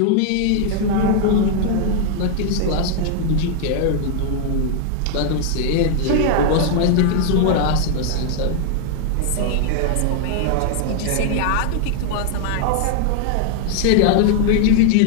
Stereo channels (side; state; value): both; different; correlation 0.00